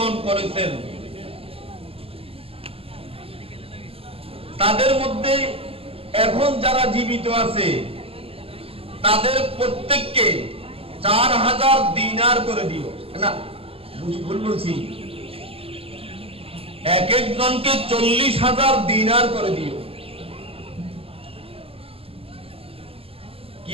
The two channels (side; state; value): left; late; 0.28 ms